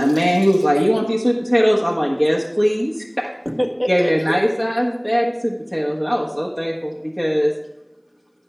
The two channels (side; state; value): both; identical; correlation 1.00